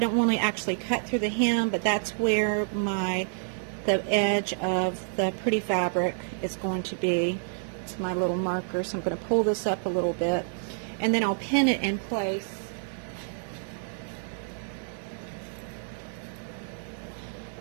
don't want to actually cut through the hem, but that's where the edge of the pretty fabric is going to be. It's my little marker, so I'm going to pull this up a little bit, and then I'll pin it in place.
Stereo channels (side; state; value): left; silent; digital silence